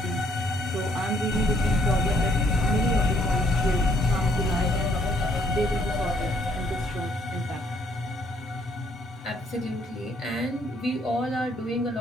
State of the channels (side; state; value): both; normal; correlation 0.68